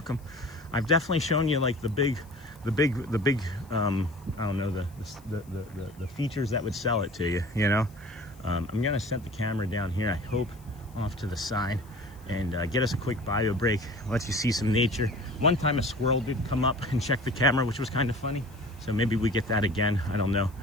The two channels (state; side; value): noise; left; hiss, 28 dB below the sound